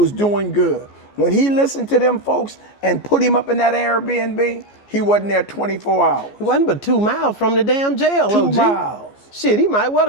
doing good. When he listened to them folks and put him up in that Airbnb, he wasn't there 24 hours. He wasn't but 2 miles from the damn jail, 2 OG. miles. Shit, he might well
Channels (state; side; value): late; right; 14 ms